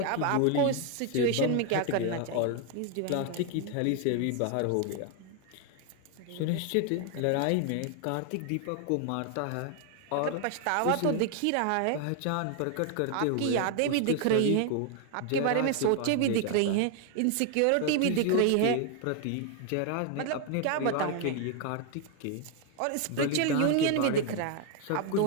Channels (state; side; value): different; both; correlation 0.00